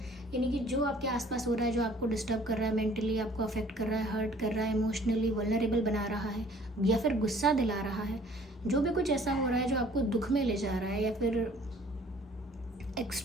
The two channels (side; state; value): both; normal; correlation 0.55